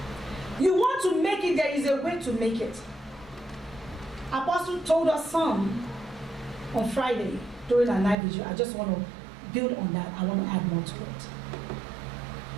You want to make it, there is a way to make it. Apostle told us some on Friday during our night vigil. I just want to build on that. I want to add more to it.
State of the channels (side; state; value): left; drops out; at 8.2 s